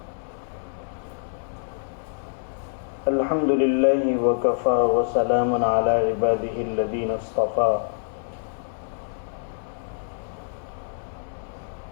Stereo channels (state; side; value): silent; right; digital silence